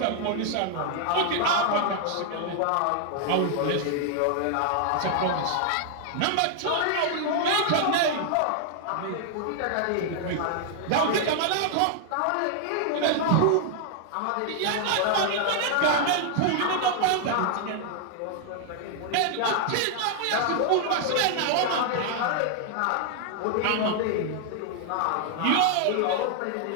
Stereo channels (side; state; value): both; different; correlation 0.00